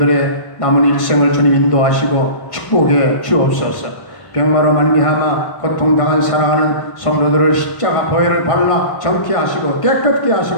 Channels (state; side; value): late; right; 1.5 ms